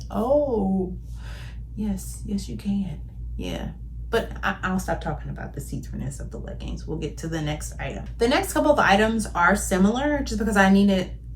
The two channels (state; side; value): identical; both; correlation 1.00